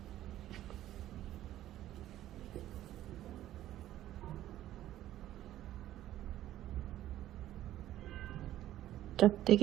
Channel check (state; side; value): quieter; left; 13.3 dB